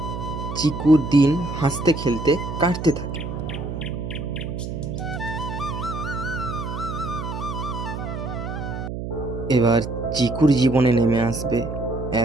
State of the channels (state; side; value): noise; right; hum, 6 dB below the sound